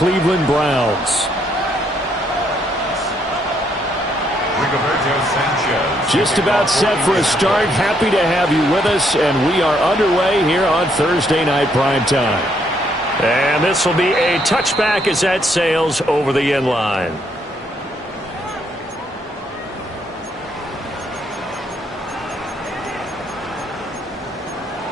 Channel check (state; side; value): normal; both; correlation 0.72